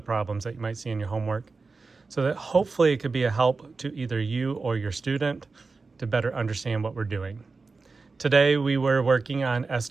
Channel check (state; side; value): quieter; left; 4.1 dB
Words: that you might see in your homework, so that hopefully it could be a help to either you or your student to better understand what we're doing. Today we were working on